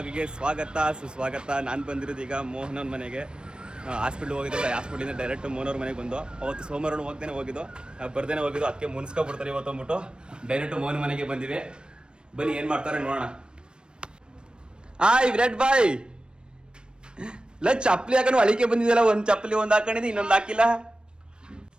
ಸ್ವಾಗತ ಸುಸ್ವಾಗತ. ನಾನು ಬಂದಿರೋದು ಈಗ ಮೋಹನ್ ಅವ್ರ ಮನೆಗೆ. ಹಾಸ್ಪಿಟ್ಲ್ ಹೋಗಿದ್ದಿಲ್ಲ, ಹಾಸ್ಪಿಟ್ಲಿಂದ ಡೈರೆಕ್ಟ್ ಮೋಹನ್ ಅವ್ರ ಮನೆಗೆ ಬಂದು. ಅವತ್ತು ಸೋಮವಾರ ಹೋಗ್ದೇನೆ ಹೋಗಿದ್ದು, ಬರ್ದೇನೆ ಹೋಗಿದ್ದು. ಅದಕ್ಕೆ ಮುನ್ಸ್ಕೊಬಿಡ್ತಾರೆ ಇವತ್ತು ಅಂದ್ಬಿಟ್ಟು ಡೈರೆಕ್ಟ್ ಮೋಹನ್ ಮನೆಗೆ ಬಂದಿವಿ. ಬನ್ನಿ ಏನು ಮಾಡ್ತಾರೆ ನೋಡೋಣ. ವಿರಾಟ್ ಬಾಯ್ ಇಲ್ಲ ಚಪ್ಪಲಿ ಹಾಕೊಂಡು ಅಳಿಕೆ ಬಂದಿದ್ದಲ್ಲ. ಒಂದು ಚಪ್ಪಲಿ ಒಂದು ಹಾಕೊಂಡಿದ್ದು, ಇನ್ನೊಂದು ಹಾಕಿಲ್ಲ.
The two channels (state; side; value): late; left; 0.053 ms